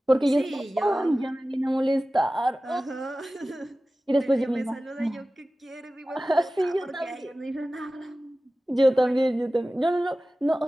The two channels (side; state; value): both; normal; correlation 0.96